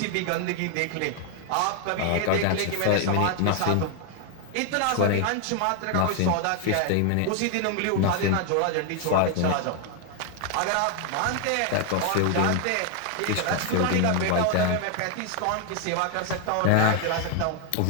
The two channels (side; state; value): both; different; correlation 0.00